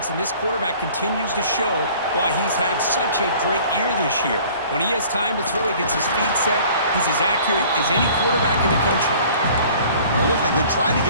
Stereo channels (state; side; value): inverted; both; correlation -0.50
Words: and this quarterback continues to show why he's had such a great year this year. When he has time to throw, he gets his feet set. He's as accurate as any quarterback in the country. It looked like they tried to